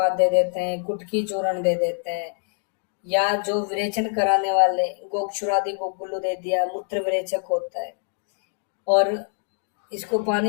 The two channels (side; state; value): right; silent; 62 dB below the other